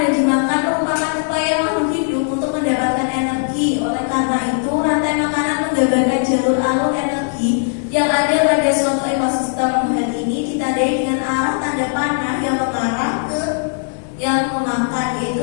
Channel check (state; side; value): silent; right; 62 dB below the other